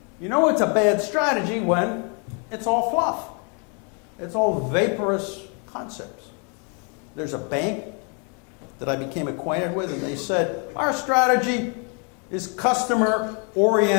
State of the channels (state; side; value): quieter; right; 37.4 dB